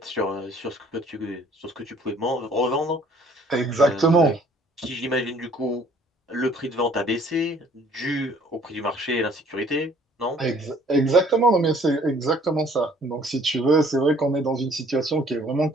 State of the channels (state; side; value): normal; both; correlation 0.58